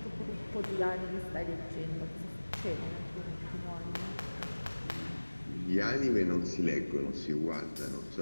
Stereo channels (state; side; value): inverted; both; correlation -1.00